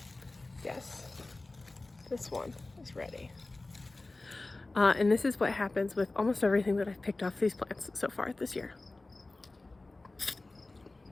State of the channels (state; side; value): quieter; right; 3.1 dB